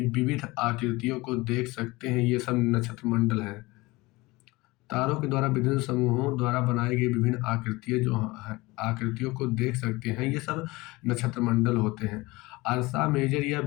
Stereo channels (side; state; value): right; quieter; 21.9 dB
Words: विविध आकृतियों को देख सकते हैं। ये सब नक्षत्र मंडल है। तारों के द्वारा विभिन्न समूहों द्वारा बनाई गई विभिन्न आकृतियों को देख सकते हैं। ये सब नक्षत्र मंडल होते हैं। अर्सा मेजर या